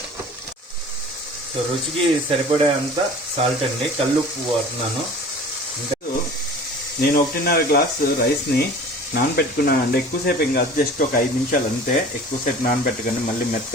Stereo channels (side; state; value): both; normal; correlation 0.43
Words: సో రుచికి సరిపడే అంత సాల్ట్ అండి, కల్లుప్పు వాడుతున్నాను. నేను 1.5 గ్లాసు రైస్ని నానబెట్టుకున్నానండి. ఎక్కువసేపు ఏం కాదు, జస్ట్ ఒక 5 నిమిషాలు అంతే. ఎక్కువసేపు నానబెట్టకండి, మళ్ళీ